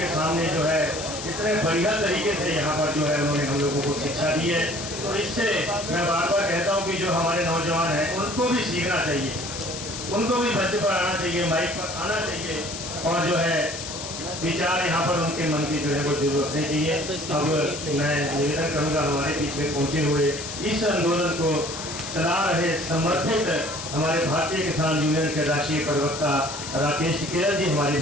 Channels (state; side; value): noise; left; hiss, 8 dB below the sound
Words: सामने जो है इतने बढ़िया तरीके से यहाँ पर जो है उन्होंने हम लोगों को शिक्षा दी है। तो इससे मैं बार बार कहता हूँ कि जो हमारे नौजवान हैं उनको भी सीखना चाहिए, उनको भी मंच पर आना चाहिए, माइक पर आना चाहिए और जो है विचार यहाँ पर उनके मन की जो है वो जरूर रखनी चाहिए। अब मैं निवेदन करूँगा हमारे बीच में पहुँचे हुए इस आंदोलन को चला रहे समर्पित हमारे भारतीय किसान यूनियन के राष्ट्रीय प्रवक्ता राकेश टिकैत जी हमारे